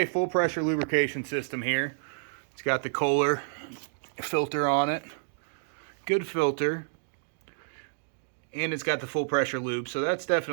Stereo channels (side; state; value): left; silent; digital silence